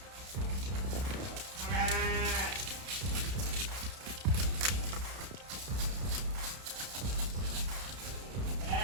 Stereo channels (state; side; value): late; left; 31 ms